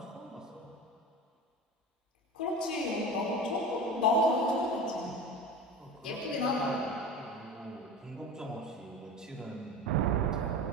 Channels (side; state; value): both; normal; correlation 0.31